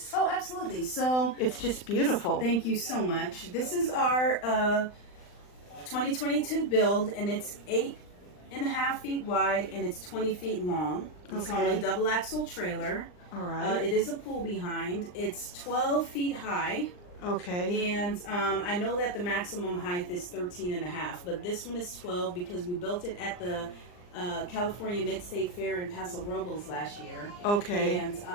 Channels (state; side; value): late; right; 39 ms